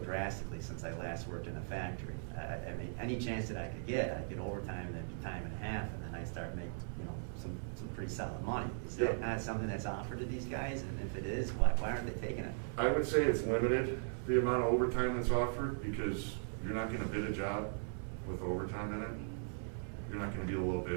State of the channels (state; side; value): silent; left; 52 dB below the other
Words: since I last worked in a factory. I mean, any chance that I could get, I'd get overtime and then do time and a half, and then I start making, some pretty solid money. Is that not something that's offered to these guys? And if it is, why aren't they taking it? I would say it's limited, the amount of overtime that's offered, because you're not going to bid a job with overtime in it. You're not going to be a little